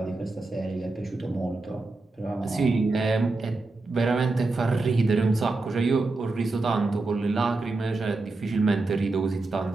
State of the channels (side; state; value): left; quieter; 3.3 dB